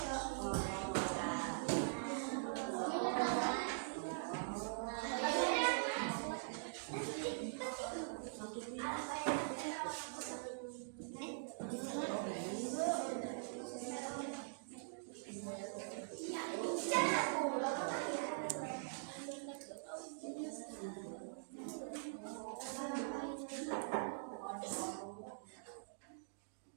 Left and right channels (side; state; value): left; quieter; 39.1 dB